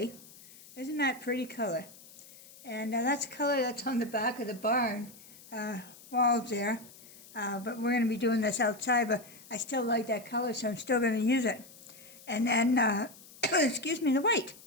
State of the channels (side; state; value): left; noise; hiss, 21 dB below the sound